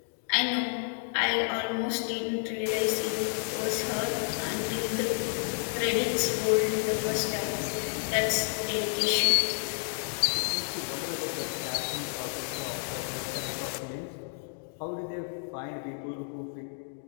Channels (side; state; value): right; silent; 58 dB below the other